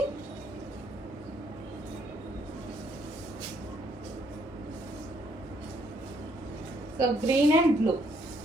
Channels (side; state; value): both; normal; correlation 0.70